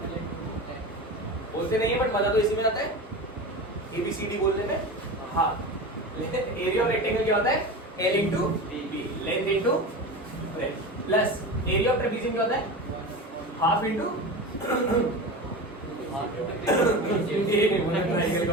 बोलते नहीं है बट मजा तो इसी में आता है, ABCD बोलने में। हाँ, एरिया ऑफ रेक्टेंगल क्या होता है? L into b, length into breadth, plus area of trapezium क्या होता है? Half into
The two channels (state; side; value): normal; both; correlation 0.28